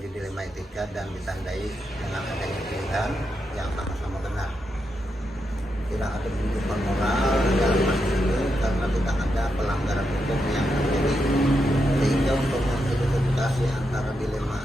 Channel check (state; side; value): normal; both; correlation 0.84